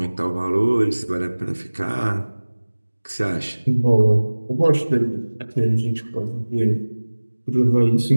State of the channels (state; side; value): inverted; both; correlation -1.00